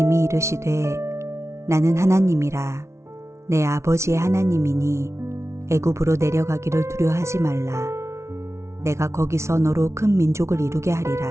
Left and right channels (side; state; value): left; late; 0.13 ms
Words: 이르시되 나는 하나님이라. 내 아버지의 하나님이니 애굽으로 내려가기를 두려워하지 말라. 내가 거기서 너로 큰 민족을 이루게